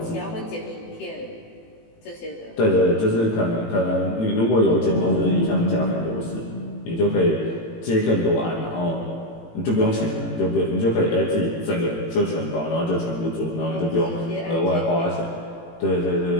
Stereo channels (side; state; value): right; late; 18 ms